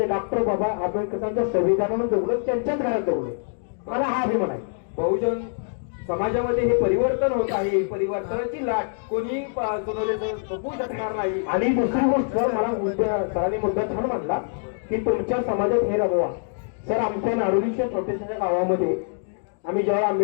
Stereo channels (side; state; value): right; silent; digital silence